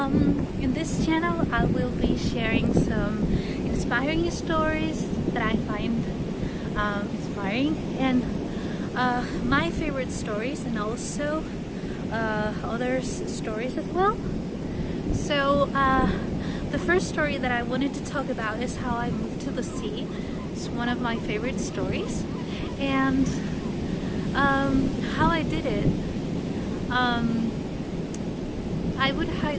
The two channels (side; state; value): both; identical; correlation 1.00